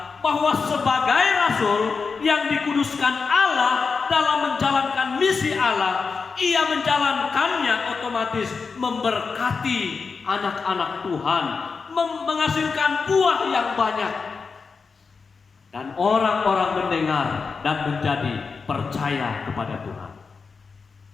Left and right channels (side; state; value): right; quieter; 5.0 dB